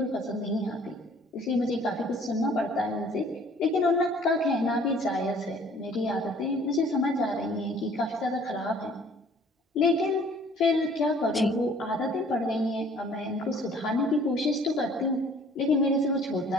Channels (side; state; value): both; normal; correlation 0.55